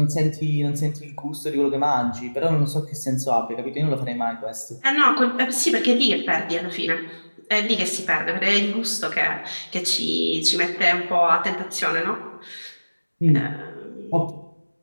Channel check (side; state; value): both; inverted; correlation -1.00